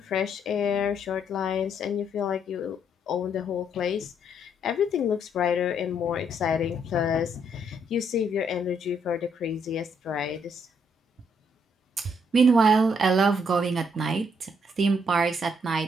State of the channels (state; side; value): normal; both; correlation 0.71